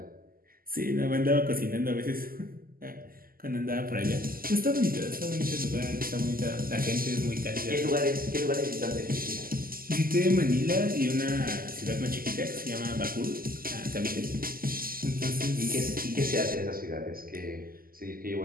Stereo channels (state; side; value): late; left; 0.42 ms